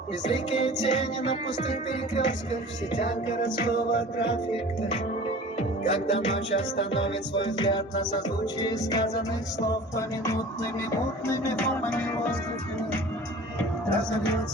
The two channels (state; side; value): normal; both; correlation 0.41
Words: Безликие тени на пустых перекрестках, в сетях городского трафика. Когда ночь остановит свой взгляд на созвучие сказанных слов поминутными мутными формами воздуха,